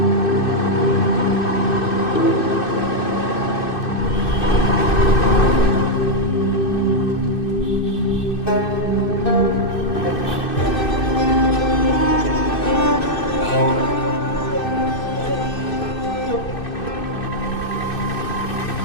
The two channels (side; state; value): right; late; 2.6 ms